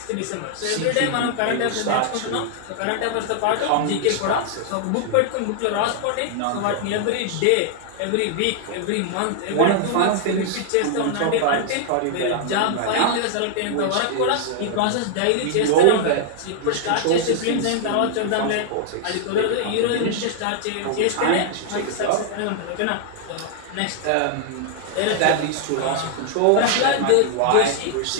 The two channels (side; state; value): both; different; correlation 0.00